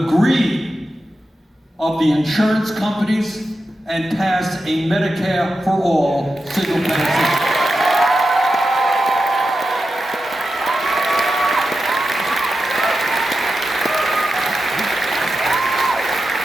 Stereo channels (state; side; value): normal; both; correlation 0.90